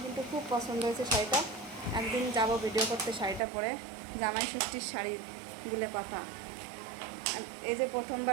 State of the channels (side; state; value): left; drops out; at 3.4 s